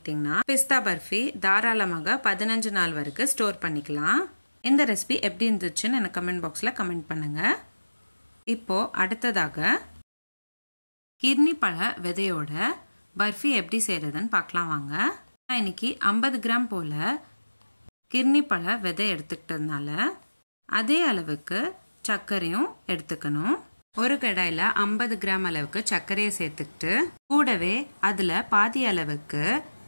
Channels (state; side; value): inverted; both; correlation -1.00